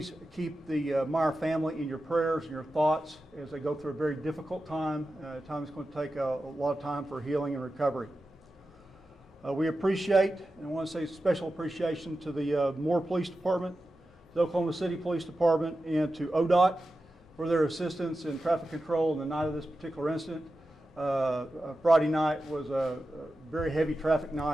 keep the Meyer family in your prayers and your thoughts as they go through a very difficult time, a time that's going to take a lot of time for healing and recovery. We appreciate, and I want to say special appreciation to the Moore Police Department, the Oklahoma City Police Department, and to ODOT for their assistance in traffic control on the night of this particular incident. Friday night was a very heavy traffic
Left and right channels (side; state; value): both; normal; correlation 0.92